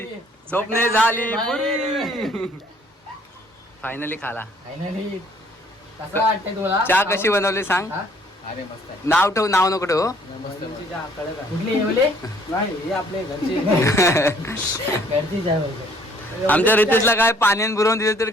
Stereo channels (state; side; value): normal; both; correlation 0.60